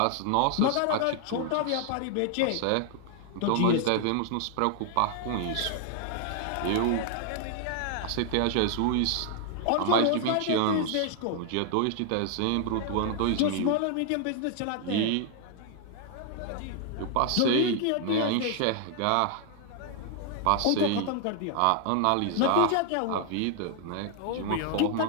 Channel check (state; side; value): different; both; correlation 0.00